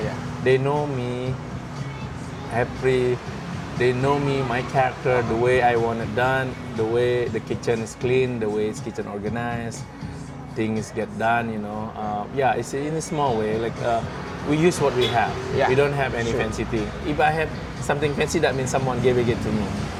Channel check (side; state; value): both; identical; correlation 1.00